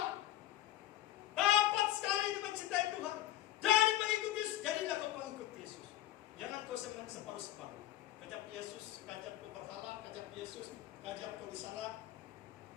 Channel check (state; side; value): quieter; right; 14.1 dB